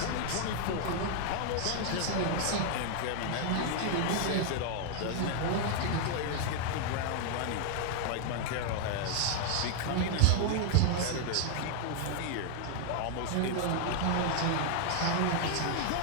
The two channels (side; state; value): both; different; correlation 0.00